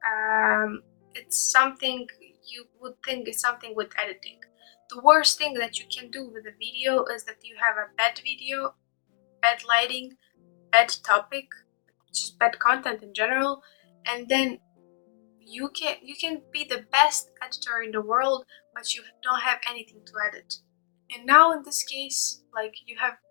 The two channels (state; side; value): silent; right; digital silence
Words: It's something you would think is something with editing. The worst thing that you can do with a video is that you have a bad video, bad lighting, bad topic, just bad content in general, and then you can be the best editor in the world, but you don't have anything to edit. And now in this case, like, you have